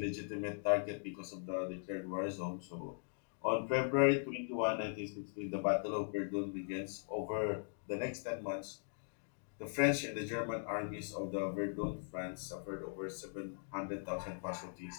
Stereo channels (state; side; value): silent; right; digital silence